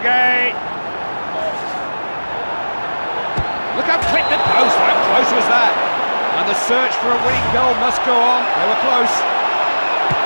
Look how quick the post. How close was that? And the search for a winning goal must go on. They were close.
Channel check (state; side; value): inverted; both; correlation -1.00